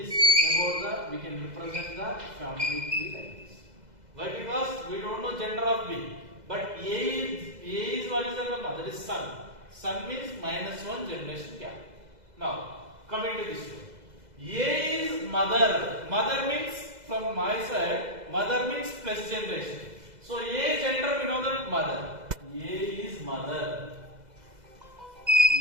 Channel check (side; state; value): left; late; 2.0 ms